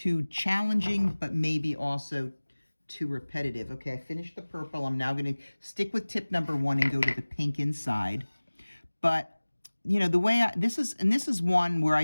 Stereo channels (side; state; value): both; inverted; correlation -1.00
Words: challenging, but maybe also too repetitive. Okay, I finished the purple. I'm now going to stick with tip number 1 and go to the pink inside. But, the way this is one where I